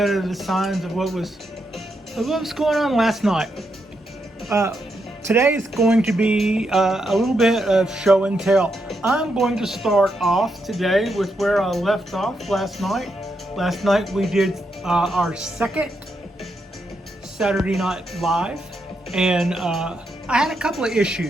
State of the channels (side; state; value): both; normal; correlation 0.82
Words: of the signs of what was going on last night. Today is going to be a little bit of show and tell. I'm going to start off today with where I left off last night. Last night we did our second Saturday Night Live, and I had a couple of